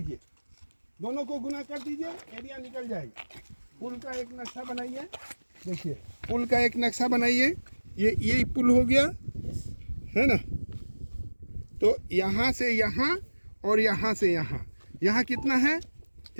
दोनों को गुना कर दीजिए, एरिया निकल जाएगा। पुल का एक नक्शा बनाइए, देखिए पुल का एक नक्शा बनाइए। ये पुल हो गया है ना? तो यहाँ से यहाँ और यहाँ से यहाँ, यहाँ कितना है,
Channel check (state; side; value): inverted; both; correlation -1.00